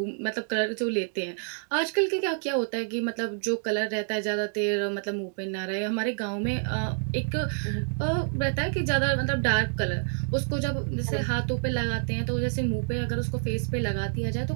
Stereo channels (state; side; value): silent; left; 59 dB below the other